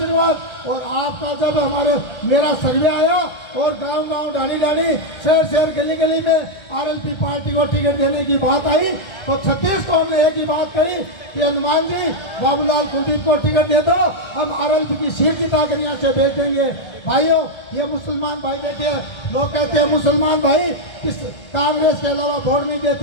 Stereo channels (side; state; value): right; late; 1.7 ms